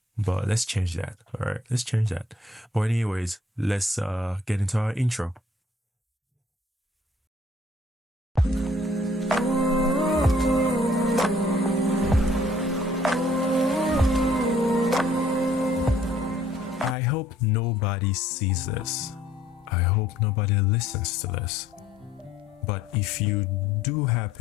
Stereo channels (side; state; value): both; normal; correlation 0.60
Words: But let's change that. All right, let's change that. But anyways, let's get into our intro. I hope nobody sees this. I hope nobody listens to this. But if you do